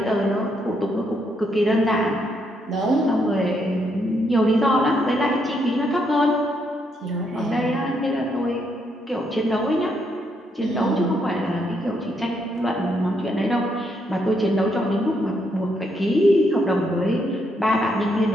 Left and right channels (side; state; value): both; normal; correlation 0.76